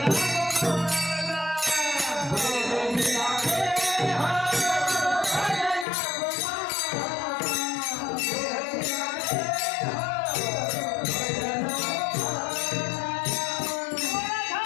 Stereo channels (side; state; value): right; drops out; at 5.9 s